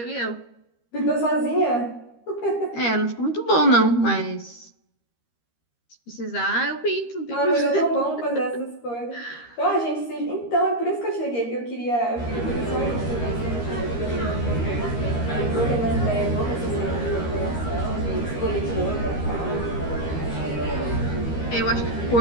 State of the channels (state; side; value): late; right; 13 ms